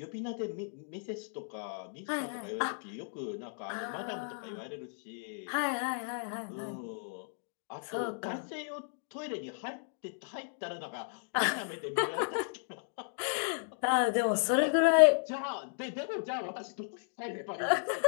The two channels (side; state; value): right; silent; digital silence